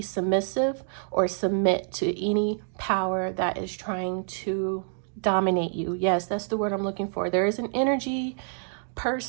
or submit to any power that is trying to dominate you. Yes, that's the word I'm looking for. There is an energy,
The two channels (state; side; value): silent; left; digital silence